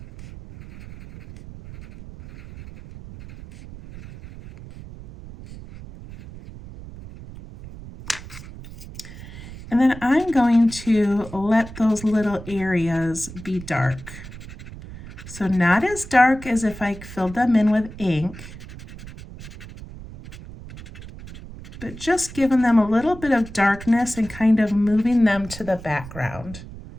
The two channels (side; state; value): right; noise; rumble, 15 dB below the sound